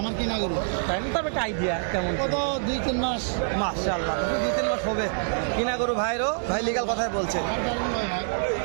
আমার কিনা গরু তাই না? তবে একটা আইডিয়া কেমন কত 2-3 মাস মাশাআল্লাহ 2-3 মাস হবে কিনা গরু ভাইরও ভাই লিগাল কথাই বলছে।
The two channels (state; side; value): silent; left; digital silence